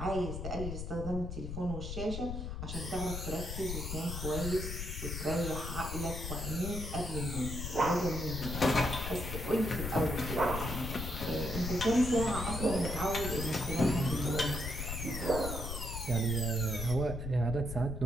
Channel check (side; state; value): left; noise; rumble, 5 dB below the sound